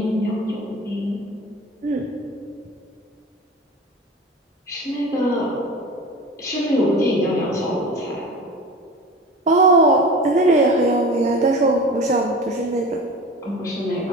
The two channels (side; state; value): both; normal; correlation 0.35